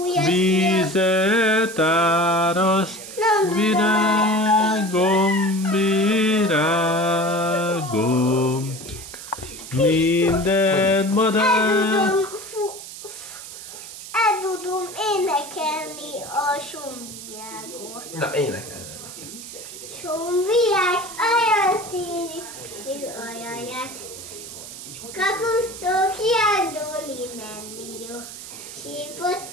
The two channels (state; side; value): noise; right; hiss, 12 dB below the sound